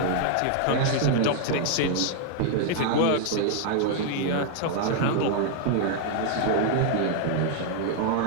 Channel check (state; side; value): different; both; correlation 0.00